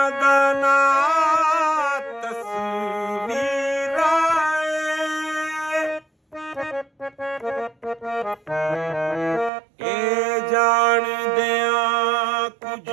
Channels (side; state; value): left; drops out; at 9.5 s